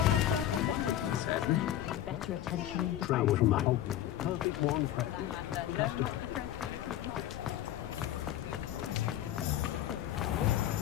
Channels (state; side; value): quieter; right; 12.2 dB